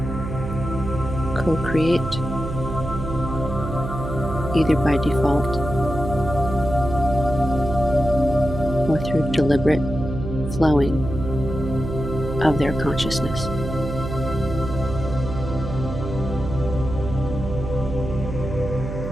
co-create either by default or through deliberate flowing of their consciousness.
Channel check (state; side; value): noise; right; hum, 6 dB below the sound